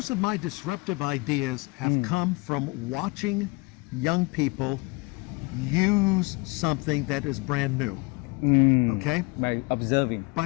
of my disruptive ideas have come from watching young people use something that is brand new. Okay? By observing. By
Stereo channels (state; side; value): quieter; right; 27.1 dB